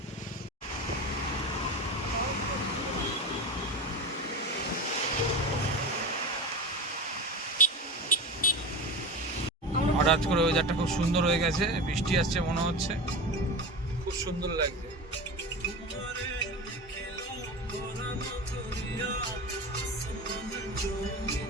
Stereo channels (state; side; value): normal; both; correlation 0.26